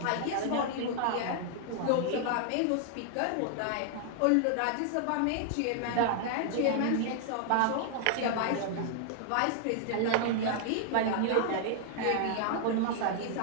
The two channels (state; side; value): different; both; correlation 0.00